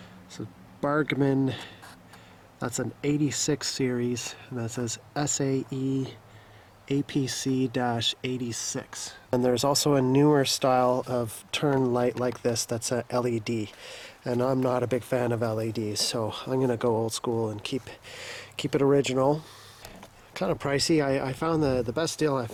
so Bargman, that's an 86 series, and that says SAE APC-86. And there's also a newer style of turn light like this that's a LED. And I'm not a big fan of LEDs, so I'm gonna go old school and keep it original. Kind of pricey. I found the best deal I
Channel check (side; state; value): both; identical; correlation 1.00